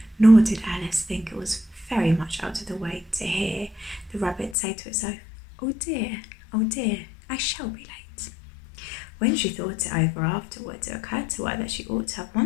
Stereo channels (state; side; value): drops out; right; at 4.5 s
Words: nor did Alice think it was very much out of the way to hear the rabbit say to itself, oh dear, I shall be late." When she thought it over afterwards, it occurred to her that she ought to have